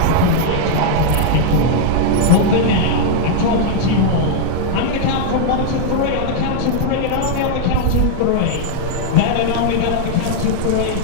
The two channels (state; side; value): different; both; correlation -0.01